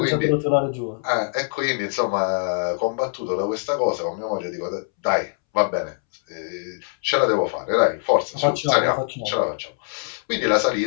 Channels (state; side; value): silent; right; 63 dB below the other